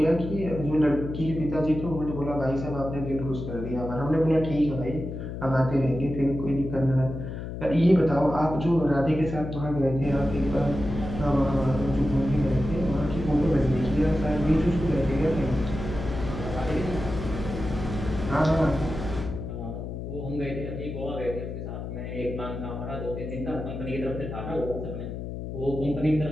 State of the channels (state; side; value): noise; left; hum, 7 dB below the sound